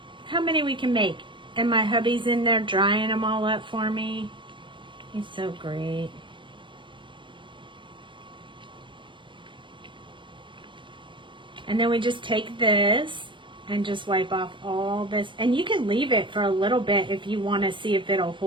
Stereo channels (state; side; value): late; left; 0.24 ms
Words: How many we can make? And my hubby's in there drying them all up for me. He's so great. And then we just take this and just wipe off all this. And you can leave it for a little bit if you want to see if it'll